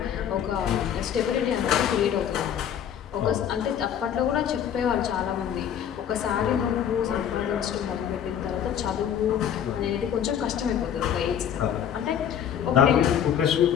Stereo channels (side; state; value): right; quieter; 9.2 dB